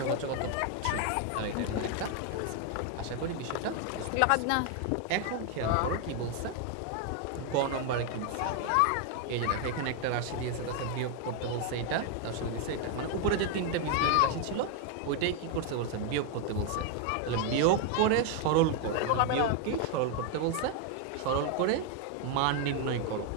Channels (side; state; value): both; different; correlation 0.01